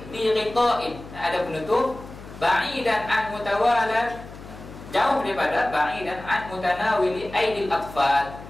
bi ghita'in, ada penutup, ba'idan an mutawalad, jauh daripada ba'idan an mutanawili aidil atfal,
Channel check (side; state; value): left; noise; hum, 16 dB below the sound